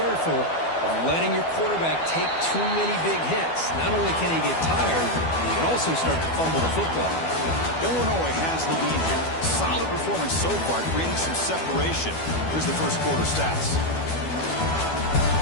of letting your quarterback take too many big hits. Not only can he get tired, he can also start to fumble the football. Illinois has the lead here. Solid performance so far, creating some separation. Here's the 1st quarter stats.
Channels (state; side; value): late; right; 12 ms